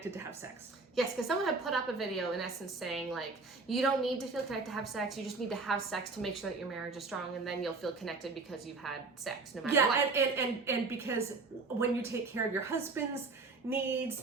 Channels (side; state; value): left; quieter; 3.9 dB